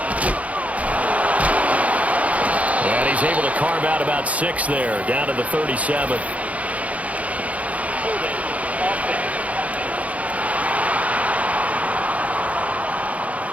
And he's able to carve out about 6 there, down to the 37.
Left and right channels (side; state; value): left; late; 0.067 ms